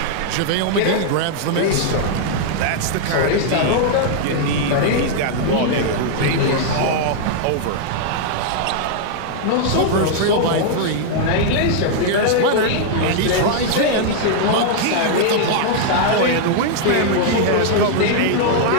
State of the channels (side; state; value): both; different; correlation -0.01